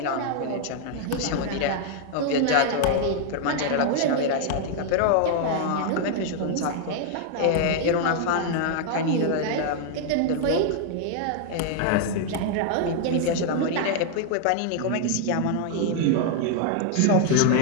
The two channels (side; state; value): both; different; correlation 0.00